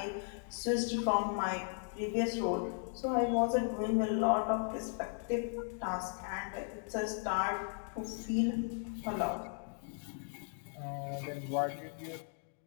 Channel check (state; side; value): silent; right; 53 dB below the other